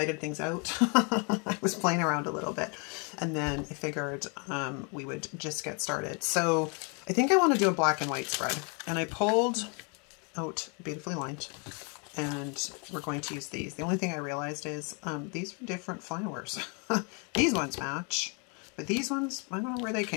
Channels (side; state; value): right; quieter; 35.3 dB